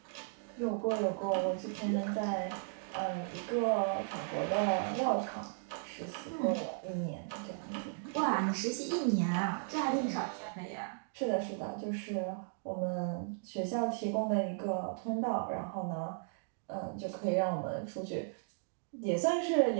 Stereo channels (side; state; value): left; silent; digital silence